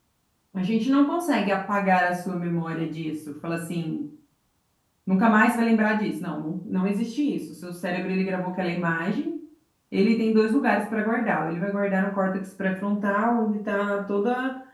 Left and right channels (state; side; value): identical; both; correlation 1.00